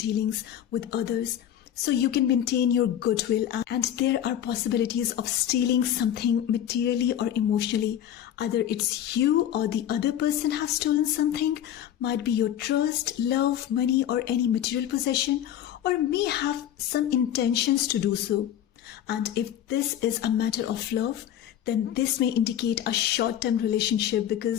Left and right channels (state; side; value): quieter; right; 10.8 dB